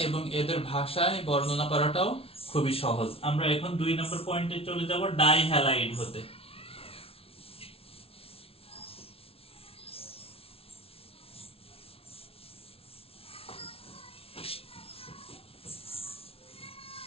এবং এদের ভাষায় বর্ণনা করাটাও খুবই সহজ। আমরা এখন 2 নম্বর পয়েন্টে চলে যাব, ডাইহ্যালাইড হতে।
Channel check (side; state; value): right; late; 0.27 ms